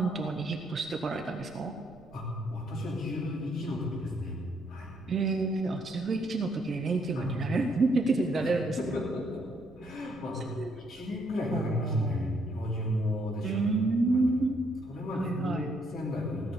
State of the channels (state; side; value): noise; right; rumble, 23 dB below the sound